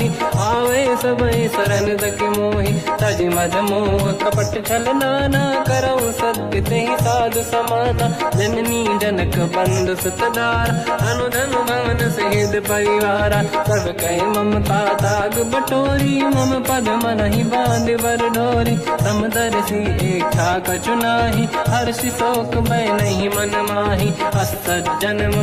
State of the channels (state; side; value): identical; both; correlation 1.00